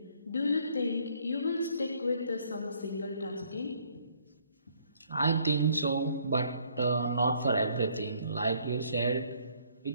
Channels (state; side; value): inverted; both; correlation -0.64